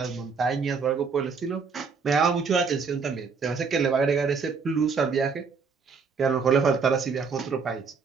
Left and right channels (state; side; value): quieter; left; 5.3 dB